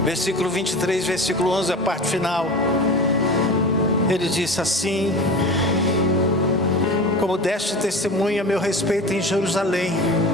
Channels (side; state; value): both; normal; correlation 0.32